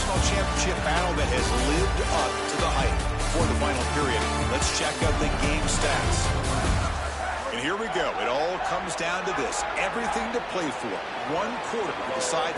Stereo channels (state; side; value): identical; both; correlation 1.00